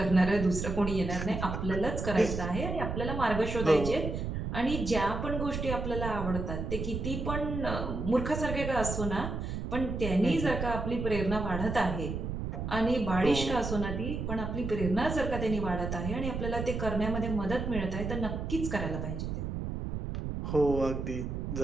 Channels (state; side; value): noise; right; rumble, 4 dB below the sound